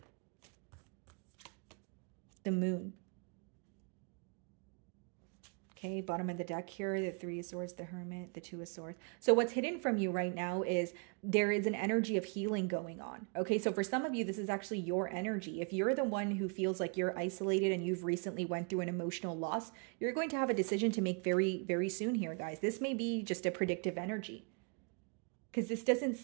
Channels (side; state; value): left; quieter; 37.5 dB